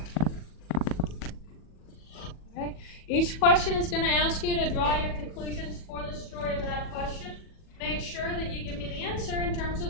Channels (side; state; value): right; late; 40 ms